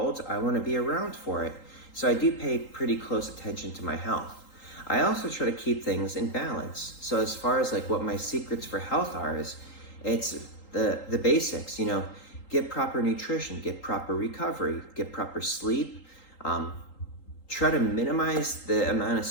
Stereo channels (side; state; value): right; late; 3.8 ms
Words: I want to be around for it. So I do pay pretty close attention to my health. I also try to keep things in balance. So as far as like what my secrets for health are, it's the basics, you know, get proper nutrition, get proper recovery, get proper sleep, try to minimize the amount of